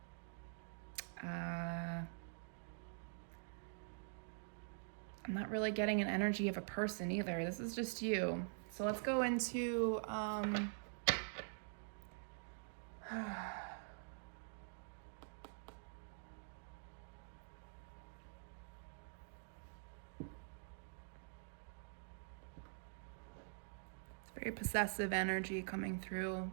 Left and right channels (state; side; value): silent; left; digital silence